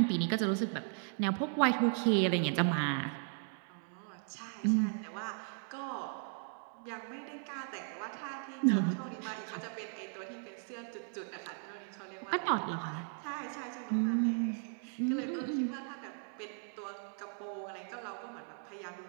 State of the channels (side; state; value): left; silent; 53 dB below the other